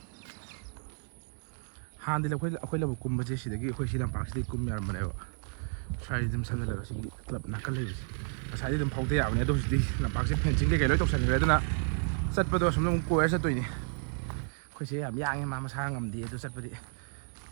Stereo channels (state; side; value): silent; left; 57 dB below the other